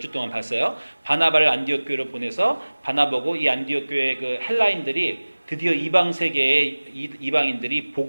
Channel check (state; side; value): inverted; both; correlation -1.00